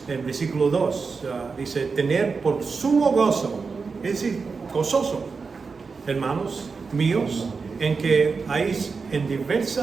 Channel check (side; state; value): left; quieter; 4.8 dB